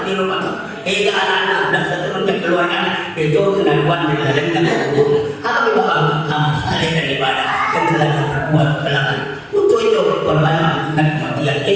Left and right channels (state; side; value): identical; both; correlation 1.00